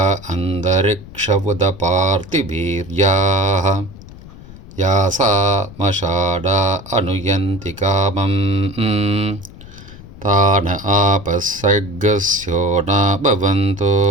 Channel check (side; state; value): left; noise; rumble, 17 dB below the sound